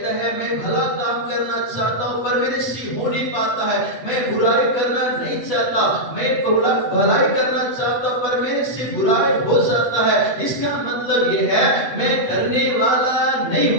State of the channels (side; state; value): right; late; 8.2 ms